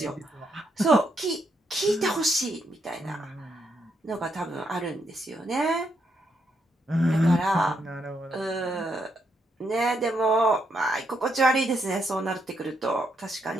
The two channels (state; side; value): normal; both; correlation 0.78